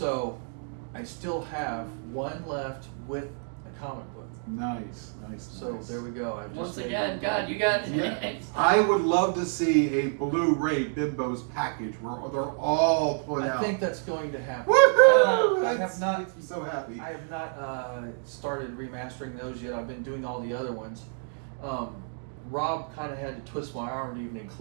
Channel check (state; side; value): silent; left; 59 dB below the other